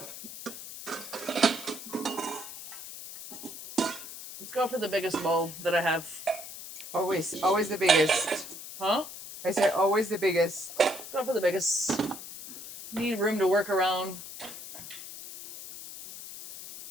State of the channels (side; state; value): left; noise; hiss, 12 dB below the sound